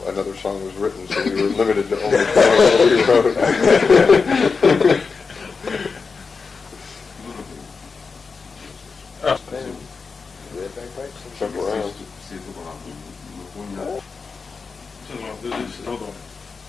another song was written, so we were limited to only songs that we wrote. Jump around. Hold on.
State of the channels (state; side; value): quieter; right; 4.9 dB